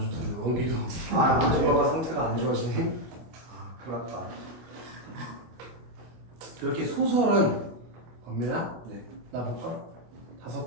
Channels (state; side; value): late; left; 25 ms